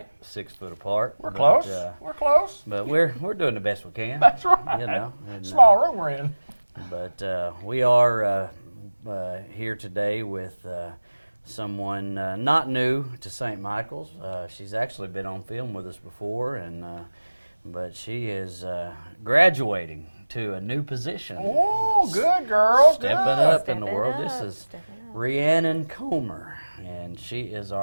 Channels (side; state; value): both; inverted; correlation -1.00